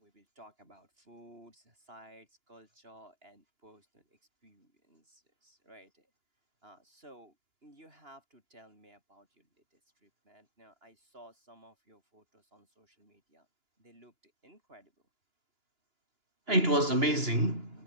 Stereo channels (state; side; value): late; left; 2.9 ms